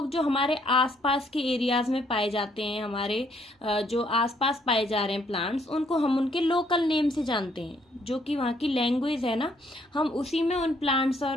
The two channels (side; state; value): both; normal; correlation 0.68